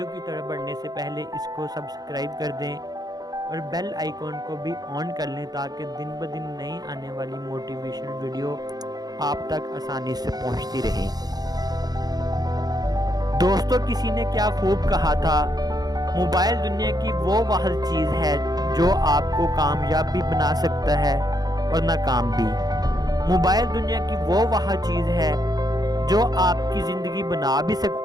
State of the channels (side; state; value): left; late; 0.19 ms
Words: کی طرف بڑھنے سے پہلے اس کو سبسکرائب کر دیں اور بیل آئیکن کو بھی آن کر لیں تاکہ دن بدن نئی آنے والی موٹیویشنل ویڈیو آپ تک آسانی سے پہنچتی رہیں۔ دوستو، کسی نے کیا خوب کہا تھا، موبائل دنیا کی وہ واحد چیز ہے جو آپ کو کامیاب بھی بنا سکتا ہے اور ناکام بھی۔ موبائل دنیا کی وہ واحد چیز ہے جو آپ کی زندگی بنا بھی